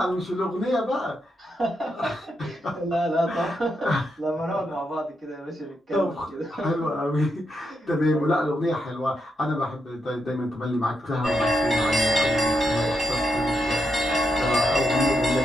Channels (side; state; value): both; normal; correlation 0.82